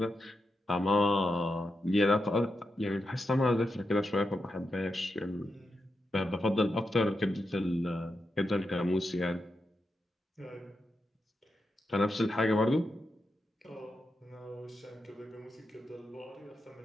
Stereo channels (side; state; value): both; normal; correlation 0.87